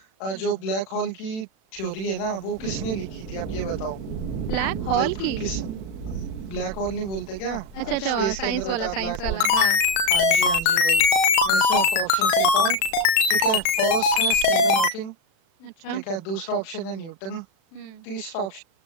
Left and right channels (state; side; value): late; right; 37 ms